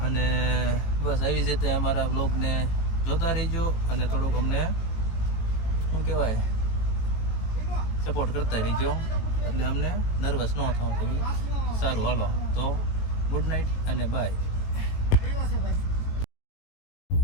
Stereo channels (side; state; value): right; late; 18 ms